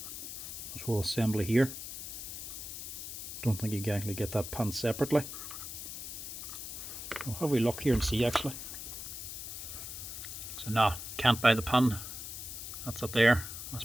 this whole assembly here. Don't think you can actually get that pin separately. We'll have a look here and see actually. So no, can't buy the pin. That's it there. That's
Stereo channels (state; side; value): noise; left; hiss, 8 dB below the sound